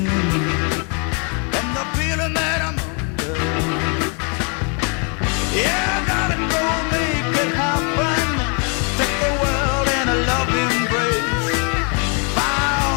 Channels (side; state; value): right; quieter; 37.0 dB